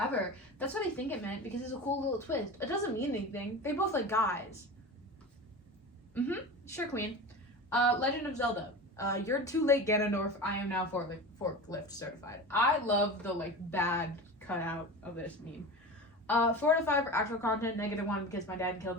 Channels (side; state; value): both; normal; correlation 0.30